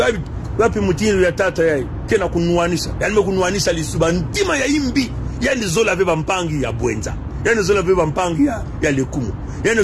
wapi mutinu ya tata yai kena kunuanisha yani mekunuanisha lisuba ntima ya imbi yani zola veba mpangi ya bwenza yani zola veba mpangi ya lekumu yani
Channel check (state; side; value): identical; both; correlation 1.00